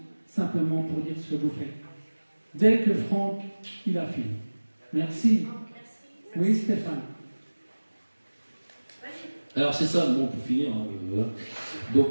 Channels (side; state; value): both; inverted; correlation -1.00